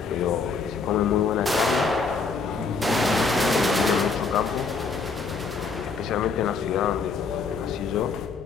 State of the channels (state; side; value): quieter; right; 4.6 dB